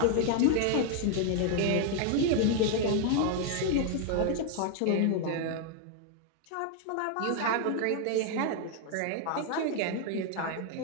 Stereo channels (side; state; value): both; different; correlation 0.00